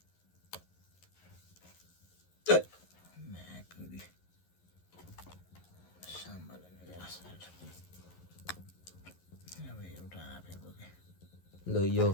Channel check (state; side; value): late; right; 11 ms